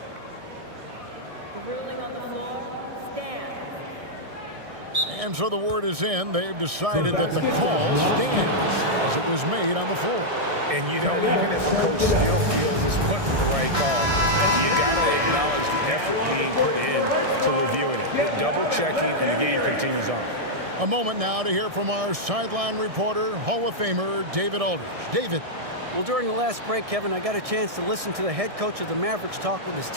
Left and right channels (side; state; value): left; late; 1.6 ms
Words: The ruling on the floor stands. And so the word is in. They've decided that the call stands as it was made on the floor. And, you know, even if a coach still feels this wasn't the right call, you got to acknowledge the effort being put in to reviewing it. Double-checking, and the game continues on. A moment now to hear from our sideline reporter, Hall of Famer David Aldridge. David. Well, during the last break, Kevin, I got a chance to listen to the head coach of the Mavericks talk with his